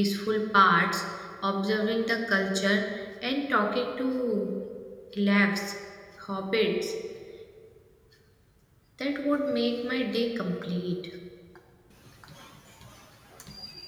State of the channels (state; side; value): identical; both; correlation 1.00